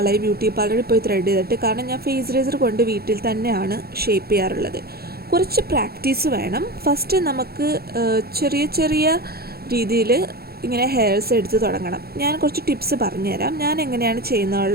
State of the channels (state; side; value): late; left; 0.45 ms